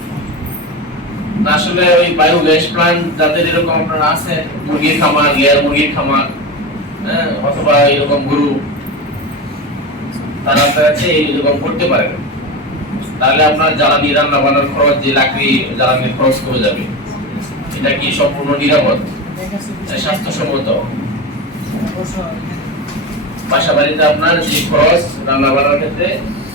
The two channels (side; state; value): both; normal; correlation 0.23